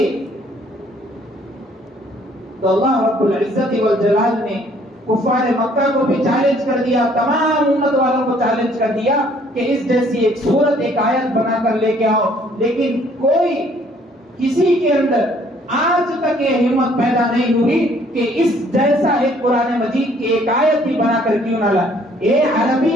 تو اللہ رب العزت والجلال نے کفار مکہ کو بھی چیلنج کر دیا, تمام امت والوں کو چیلنج کر دیا کہ اس جیسی ایک سورت ایک آیت بنا کر لے کے آؤ. لیکن کوئی کسی کے اندر آج تک یہ ہمت پیدا نہیں ہوئی کہ اس جیسا ایک قرآن مجید کی ایک آیت ہی بنا کر کیوں نہ لائے. یہ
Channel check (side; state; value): both; normal; correlation 0.61